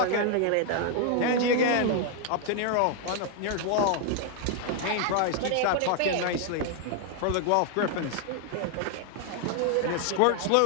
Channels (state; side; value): different; both; correlation 0.00